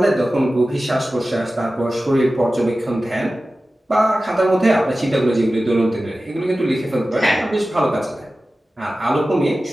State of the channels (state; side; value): normal; both; correlation 0.95